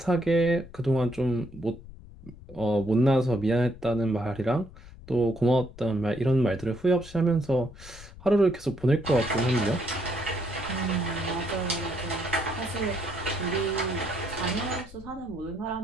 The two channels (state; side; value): noise; left; rumble, 17 dB below the sound